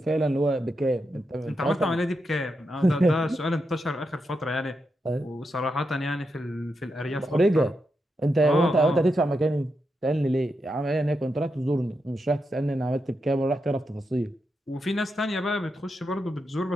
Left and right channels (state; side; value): normal; both; correlation 0.85